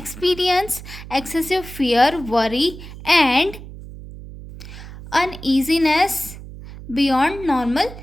excessive fear, worry and uneasiness beyond normal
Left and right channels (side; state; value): right; noise; hum, 14 dB below the sound